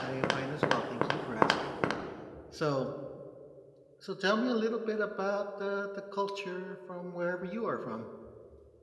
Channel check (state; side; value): identical; both; correlation 1.00